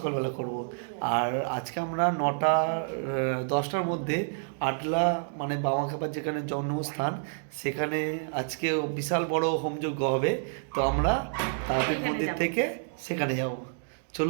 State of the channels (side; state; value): left; silent; digital silence